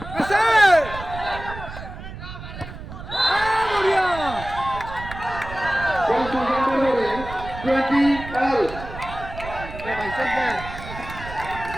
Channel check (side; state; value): right; noise; rumble, 11 dB below the sound